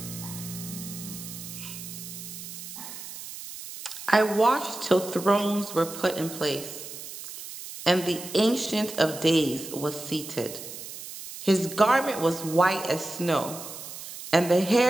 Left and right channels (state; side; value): noise; right; hiss, 11 dB below the sound